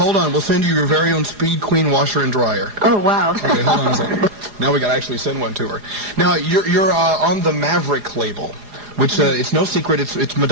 on. We'll send you your very own Speed Queen washer and dryer. Oh, wow. Okay, hold on a second. Now we got to actually send one to her. Now, you're on the Maverick label, which it's no secret it's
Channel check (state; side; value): late; left; 4.8 ms